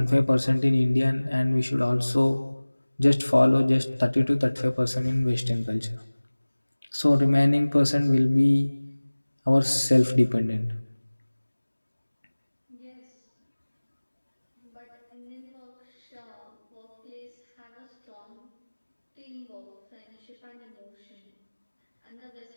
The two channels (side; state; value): both; inverted; correlation -1.00